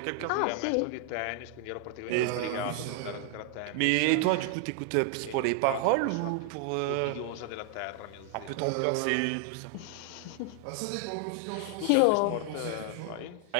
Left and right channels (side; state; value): both; different; correlation 0.00